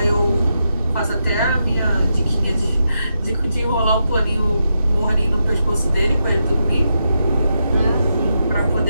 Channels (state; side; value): inverted; both; correlation -0.84